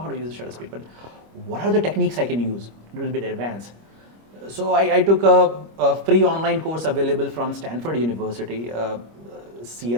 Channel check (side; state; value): left; late; 25 ms